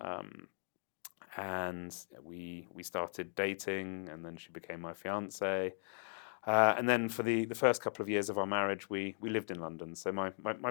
And we started dating, and then she became my fiance. And then for the first couple of years of our marriage, we lived in London. So my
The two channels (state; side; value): silent; right; digital silence